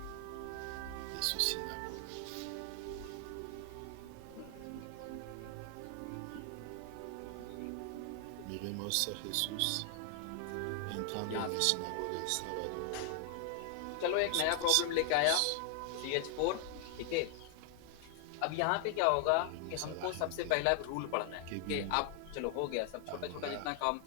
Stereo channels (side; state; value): both; different; correlation 0.00